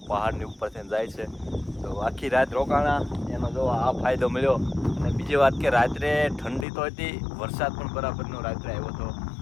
પહાડની ઉપરથી જાય છે. તો આખી રાત રોકાણા એનો જો આ ફાયદો મળ્યો. અને બીજી વાત કે રાત્રે ઠંડી તો હતી, વરસાદ પણ બરાબરનો રાત્રે આવ્યો હતો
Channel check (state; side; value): drops out; right; at 6.7 s